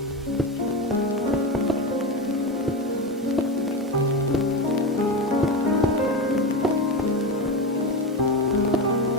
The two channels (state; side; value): normal; both; correlation 0.18